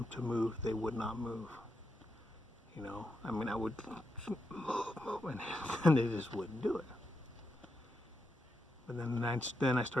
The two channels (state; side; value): normal; both; correlation 0.84